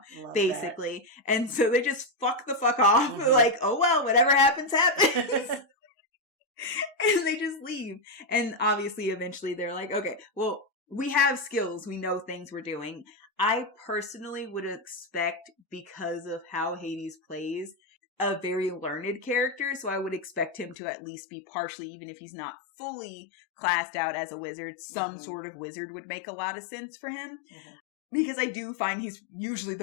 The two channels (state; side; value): drops out; right; at 20.8 s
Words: basically. That. And so they just fuck the fuck off. Like, oh well, whatever happens, happens. And they just leave. And obviously eventually they're like, okay, well, we have skills. We know things we're doing. I personally would expect, because of how Hades plays, a very learned character, so I would expect him to at least be partially, even if he's not fully classed out as a wizard, some sort of wizard would make a lot of sense for him. Because I do find he's usually